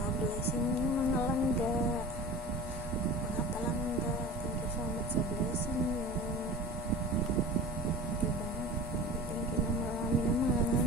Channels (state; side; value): normal; both; correlation 0.37